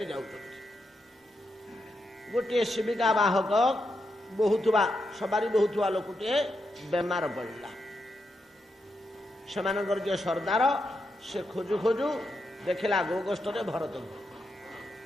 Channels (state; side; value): normal; both; correlation 0.84